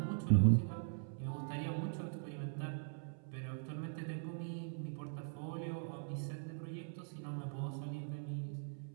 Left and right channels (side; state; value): left; silent; 50 dB below the other